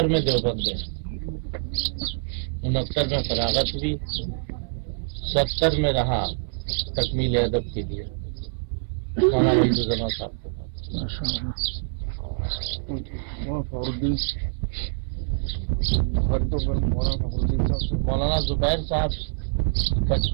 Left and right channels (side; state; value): left; silent; 57 dB below the other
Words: میں دیوبند گئے. 69 میں فراغت ہوئی. 70 میں رہا تکمیل ادب کے لیے مولانا وحید صاحب کے پاس. مولانا زبیر صاحب